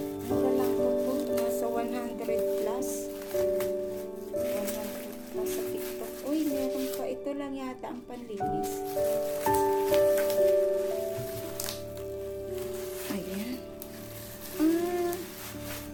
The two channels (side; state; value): both; identical; correlation 1.00